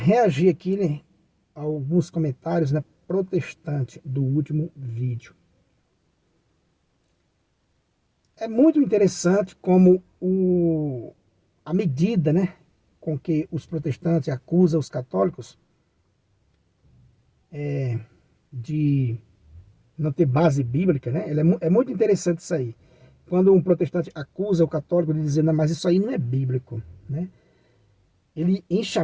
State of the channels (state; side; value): identical; both; correlation 1.00